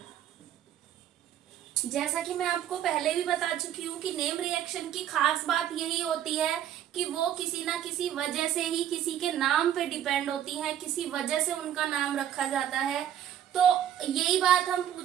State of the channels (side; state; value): left; quieter; 10.6 dB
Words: जैसा कि मैं आपको पहले भी बता चुकी हूँ कि नेम रिएक्शन की खास बात यही होती है कि वो किसी ना किसी वजह से ही किसी के नाम पे डिपेंड होती है, किसी वजह से उनका नाम रखा जाता है। तो यही बात हम